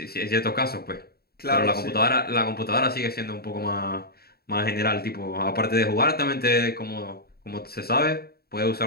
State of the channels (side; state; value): right; late; 0.45 ms